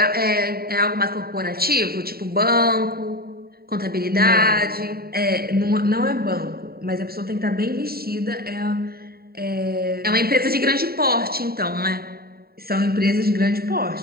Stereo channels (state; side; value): late; left; 0.45 ms